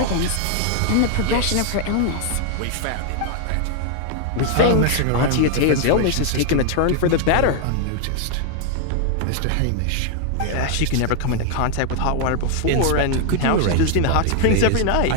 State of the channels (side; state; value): both; different; correlation 0.00